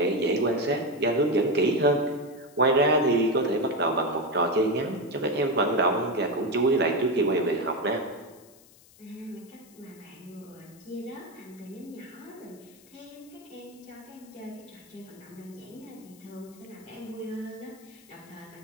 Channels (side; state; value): left; noise; hiss, 25 dB below the sound